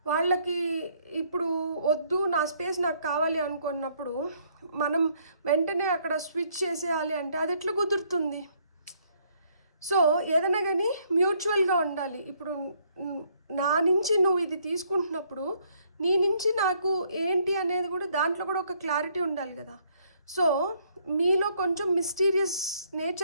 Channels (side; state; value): both; inverted; correlation -0.67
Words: వాళ్ళకి ఇప్పుడు వద్దు, నా స్పేస్ నాకు కావాలి అనుకున్నప్పుడు మనం వెంటనే అక్కడ స్విచ్ చేసేయాలి అంటే అది ఎట్లా కుదురుతుంది? సో ఏదైనా కానీ మ్యూచువల్గా ఉండాలి. ఇప్పుడు నా నుంచి నువ్వు ఇది తీసుకుంటున్నప్పుడు నీ నుంచి నాకు ఏంటి అనేది కూడా దాంట్లో కూడా ఒక క్లారిటీ ఉండాలి కదా. సో మీలో కొంచెం మిస్టీరియస్